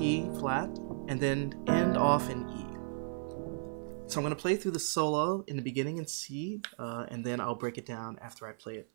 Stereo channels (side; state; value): left; silent; 55 dB below the other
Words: flat and then end off in E. So I'm going to play through the solo in the beginning in C and then I'll break it down after I play it